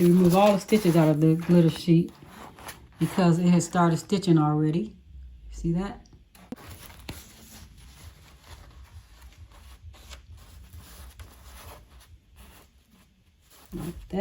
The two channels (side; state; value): both; identical; correlation 1.00